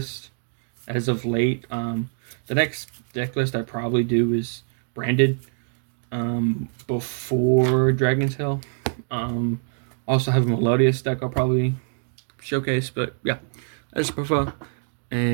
as of late. The next deck list I probably do is branded before Dragon's Hill. Also have a Melodious deck I'll probably showcase, but yeah, that's profile,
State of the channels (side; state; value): left; silent; 62 dB below the other